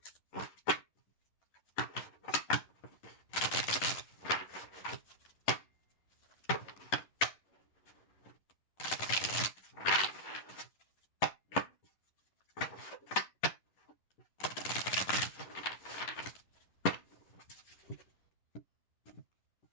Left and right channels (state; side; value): late; right; 10 ms